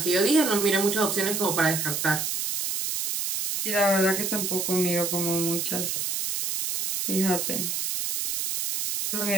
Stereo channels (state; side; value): noise; right; hiss, 1 dB below the sound